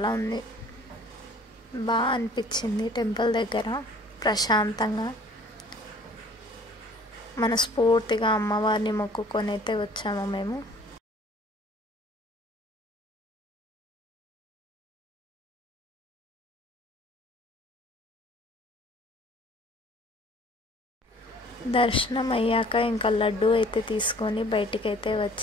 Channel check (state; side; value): normal; both; correlation 0.53